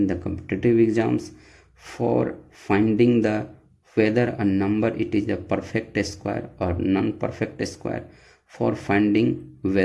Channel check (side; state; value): both; identical; correlation 1.00